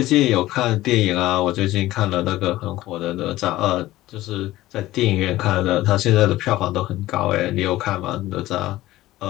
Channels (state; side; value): quieter; right; 16.4 dB